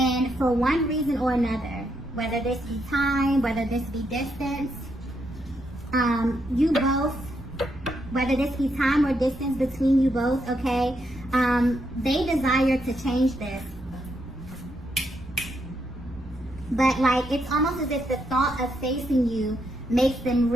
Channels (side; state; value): right; noise; rumble, 17 dB below the sound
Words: for one reason or another, whether this be time, whether this be distance, you both, whether this be time or distance between you both, okay, they desire to change this. But like, it's almost as if the thought of facing you makes them